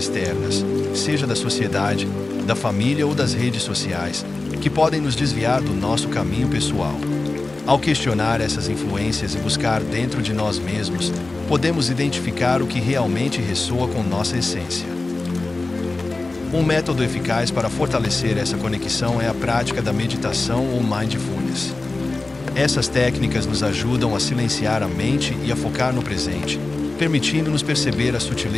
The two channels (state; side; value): quieter; right; 3.3 dB